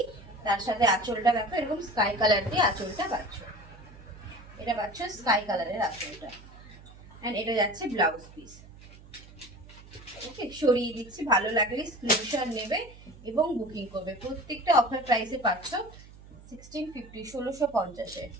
তার সাথে আঁচলটা দেখো এরকম স্কাই কালার দিয়ে আঁচলটা পাচ্ছ। এটা পাচ্ছ স্কাই কালারের আঁচলটা, এন্ড এটা যাচ্ছে ব্লাউজ পিস। ওকে, সরিয়ে দিচ্ছি, ভালো লাগলে স্ক্রিনশট নেবে এবং বুকিং করবে। প্রত্যেকটা অফার প্রাইসে পাচ্ছ 1650, 1650-এ।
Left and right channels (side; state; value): right; noise; hum, 20 dB below the sound